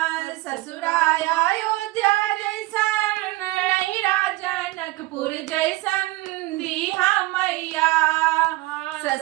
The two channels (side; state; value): left; quieter; 19.5 dB